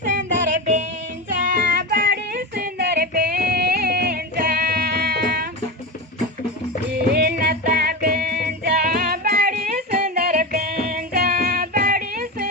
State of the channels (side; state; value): both; normal; correlation 0.19